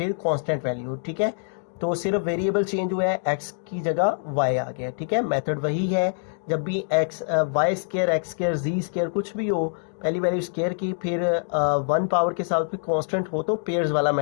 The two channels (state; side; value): silent; right; digital silence